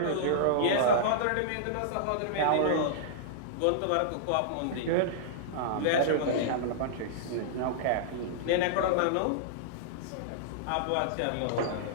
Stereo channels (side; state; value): both; different; correlation -0.02